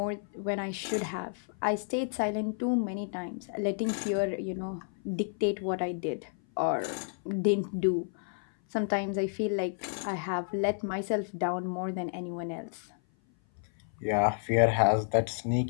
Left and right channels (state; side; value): silent; right; 56 dB below the other